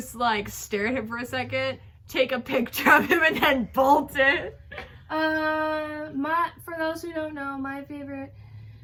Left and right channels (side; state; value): both; identical; correlation 1.00